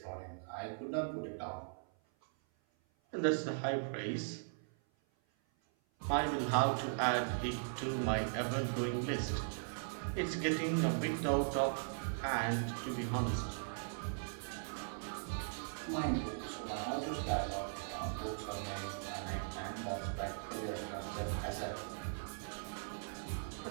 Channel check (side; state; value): left; silent; 52 dB below the other